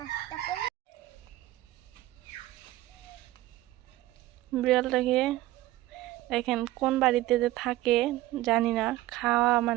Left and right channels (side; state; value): left; quieter; 16.4 dB